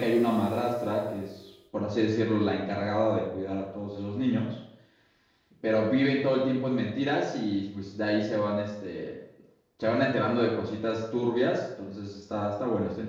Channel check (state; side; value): identical; both; correlation 1.00